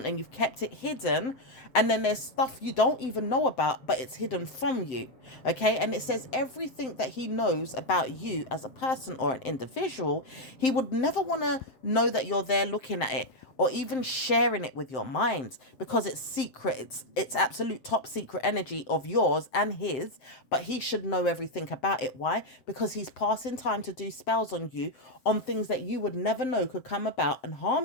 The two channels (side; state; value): right; late; 7.7 ms